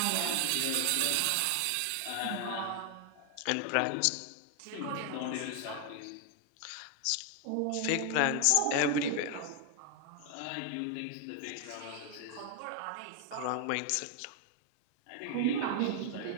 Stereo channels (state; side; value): different; both; correlation 0.00